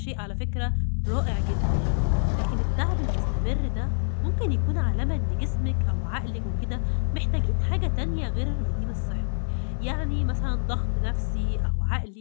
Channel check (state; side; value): silent; right; digital silence